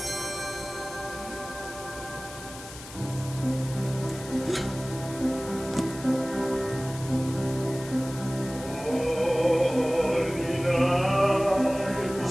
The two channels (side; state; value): left; noise; hiss, 14 dB below the sound